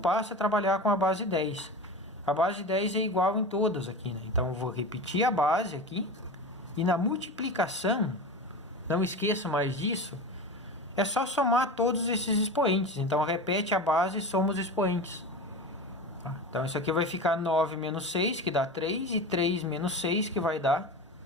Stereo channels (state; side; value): normal; both; correlation 0.28